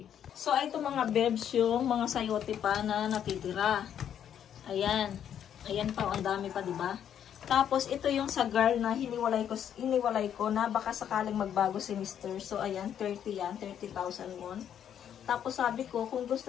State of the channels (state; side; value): quieter; right; 9.4 dB